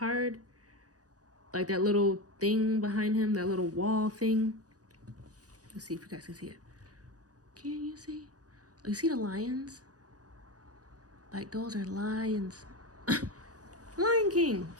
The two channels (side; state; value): left; late; 0.67 ms